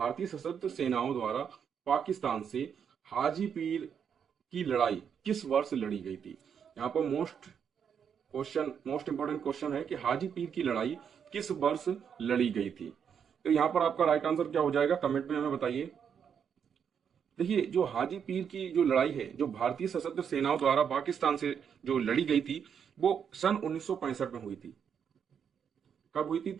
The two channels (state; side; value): quieter; left; 7.5 dB